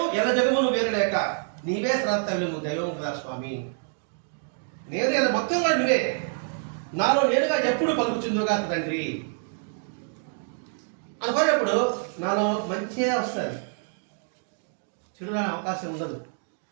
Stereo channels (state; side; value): silent; left; 60 dB below the other